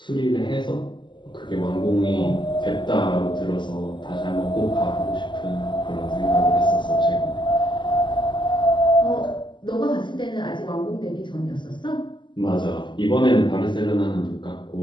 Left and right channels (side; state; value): right; late; 0.22 ms